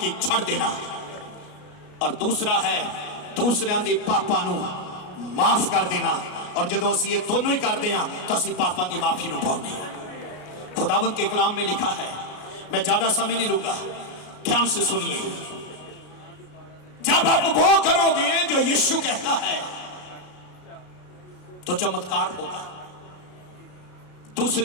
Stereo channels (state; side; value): late; right; 33 ms